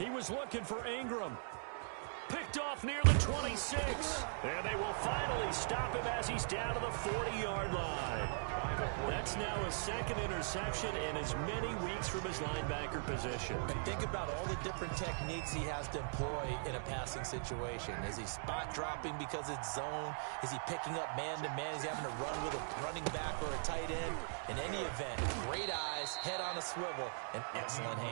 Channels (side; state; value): left; silent; digital silence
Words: was looking for Ingram. Picked off near the 26. And they will finally stop him as he's down to the 40-yard line. That's now his 2nd interception in as many weeks from his linebacker position. And think about all the different techniques he has to employ in a passing situation. Is he spot dropping because it's zone? Is he picking up man-to-man? Is he having to run with a running back or a tight end? In any event, great eyes, head on a swivel, and excellent